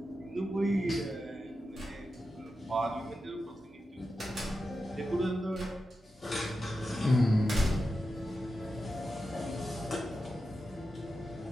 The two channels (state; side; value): normal; both; correlation 0.90